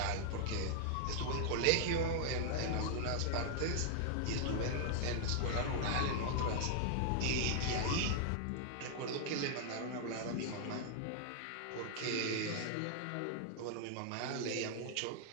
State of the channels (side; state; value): both; different; correlation 0.00